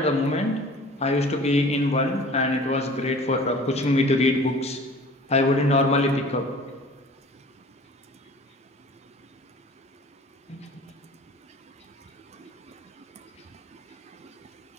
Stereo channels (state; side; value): normal; both; correlation 0.45